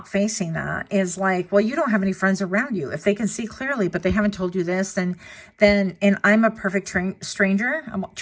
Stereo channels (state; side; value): identical; both; correlation 1.00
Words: facing that is like, well, you don't have any friends around you. If they can see clearly, but they haven't told you this, and I'm a perfect stranger. I'm a